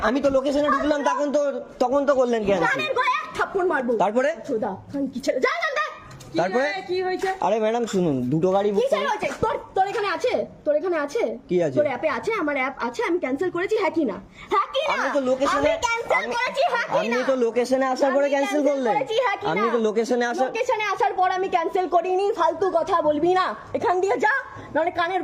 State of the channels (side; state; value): both; identical; correlation 1.00